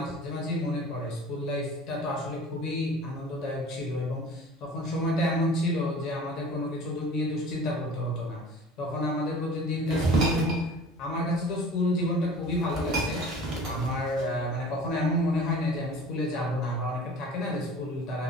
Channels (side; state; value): both; normal; correlation 0.43